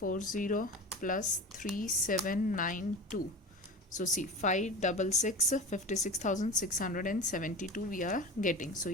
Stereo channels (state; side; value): normal; both; correlation 0.30